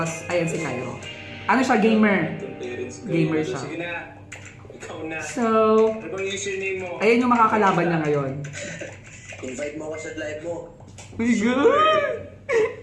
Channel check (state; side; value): identical; both; correlation 1.00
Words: ayan si Cairo. Ano siya, gamer. Gamer siya. Sige na, ikaw na. So, Ano bang username mo? ayan yung makakalaban niya ngayon. Invite mo ako sa live mo. My God!